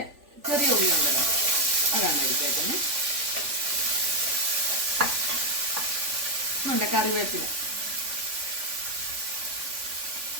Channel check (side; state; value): left; late; 3.5 ms